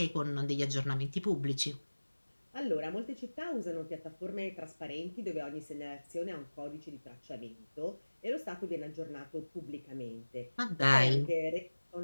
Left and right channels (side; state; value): both; inverted; correlation -1.00